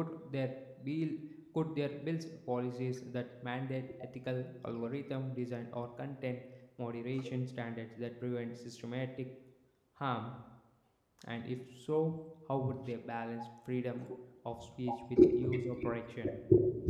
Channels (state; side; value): identical; both; correlation 1.00